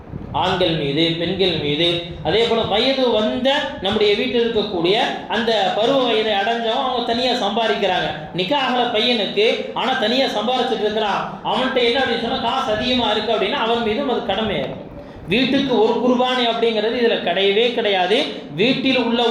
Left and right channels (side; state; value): both; identical; correlation 1.00